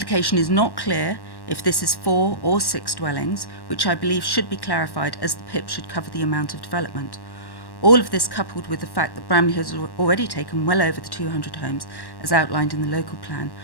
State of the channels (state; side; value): late; right; 1.1 ms